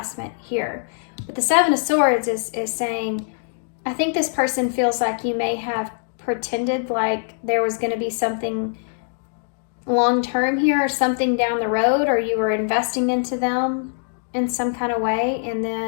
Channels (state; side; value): silent; right; digital silence